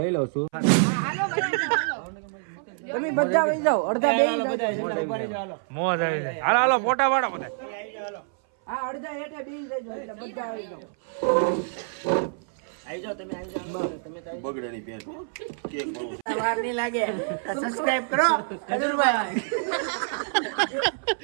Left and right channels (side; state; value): left; silent; 58 dB below the other